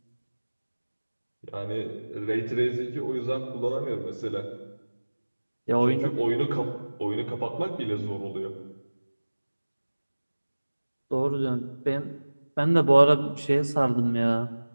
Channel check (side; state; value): both; inverted; correlation -1.00